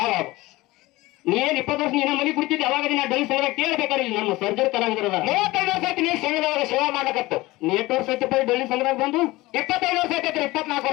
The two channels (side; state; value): right; quieter; 19.8 dB